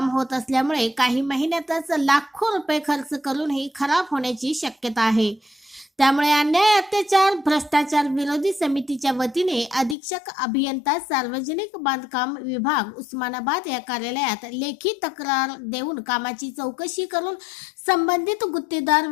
होत असल्यामुळे काही महिन्यातच लाखो रुपये खर्च करूनही खराब होण्याची शक्यता आहे. त्यामुळे अन्याय, अत्याचार, भ्रष्टाचार विरोधी समितीच्या वतीने अधीक्षक अभियंता सार्वजनिक बांधकाम विभाग उस्मानाबाद या कार्यालयात लेखी तक्रार देऊन कामाची चौकशी करून संबंधित गुत्तेदार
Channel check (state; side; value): drops out; right; at 10.0 s